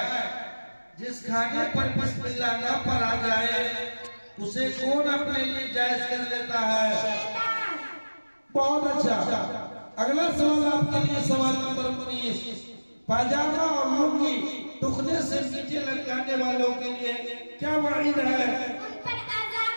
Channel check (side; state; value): both; inverted; correlation -1.00